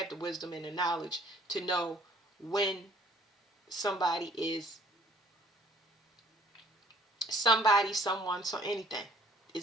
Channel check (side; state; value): both; normal; correlation 0.57